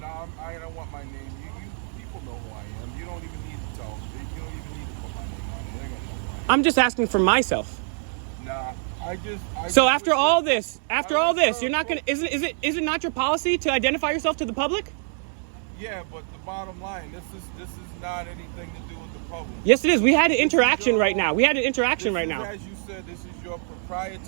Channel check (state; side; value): silent; left; 57 dB below the other